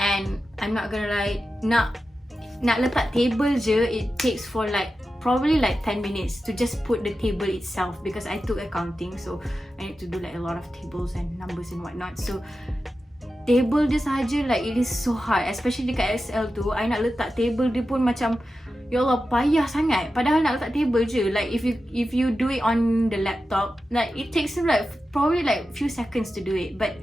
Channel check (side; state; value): both; normal; correlation 0.92